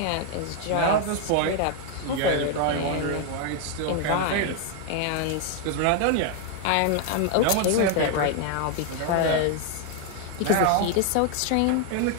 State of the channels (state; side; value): different; both; correlation 0.00